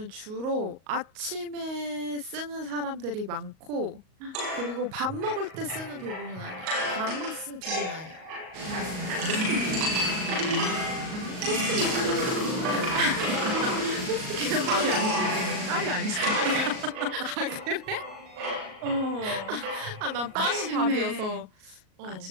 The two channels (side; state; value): left; late; 38 ms